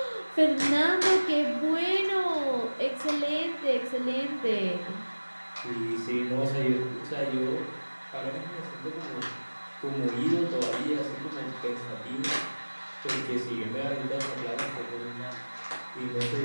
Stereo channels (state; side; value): inverted; both; correlation -1.00